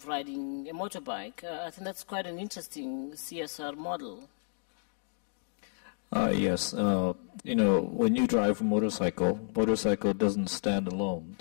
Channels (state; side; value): silent; right; digital silence